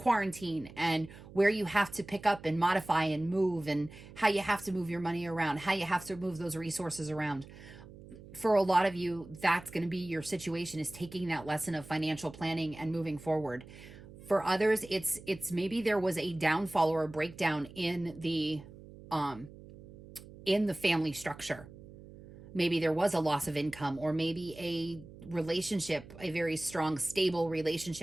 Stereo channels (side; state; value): right; noise; hum, 18 dB below the sound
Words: and where you have to pick up and modify and move, and how you have to move your money around, how you have to move those resources around. For a lot of you, that's going to be your situation, is taking that lesson of financial planning and moving forward. For others, it's maybe there was a downfall or a breakdown in the family structure. Maybe there was a loss of income, or maybe a relationship, a very strong, stable